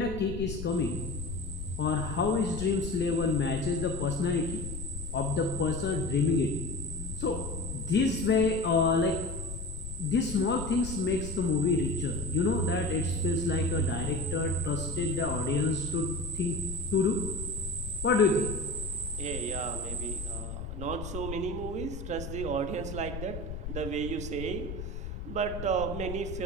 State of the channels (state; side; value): noise; left; rumble, 8 dB below the sound